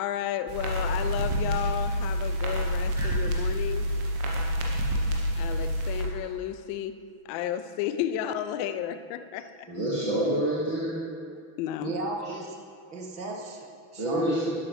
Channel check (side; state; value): right; late; 6.1 ms